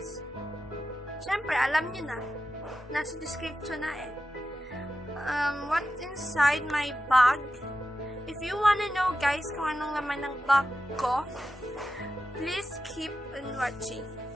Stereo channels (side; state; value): both; normal; correlation 0.91